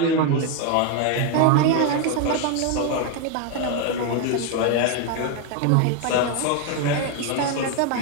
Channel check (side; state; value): both; different; correlation 0.01